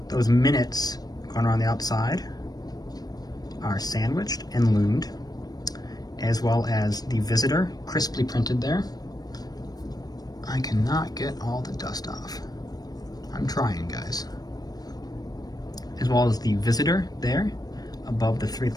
those minutes going around the outside are sandwiched and loomed, as well as the Visitor crisply printed there. I cannot get all the dust off. I'm trying, guys. As well as the Visitor there above the 3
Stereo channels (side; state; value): right; late; 0.19 ms